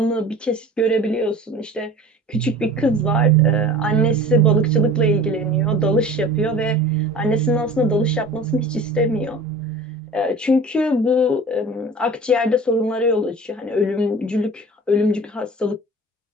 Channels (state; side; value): normal; both; correlation 0.41